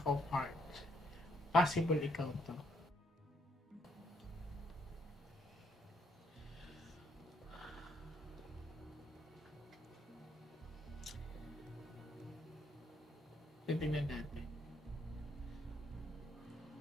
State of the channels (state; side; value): normal; both; correlation 0.72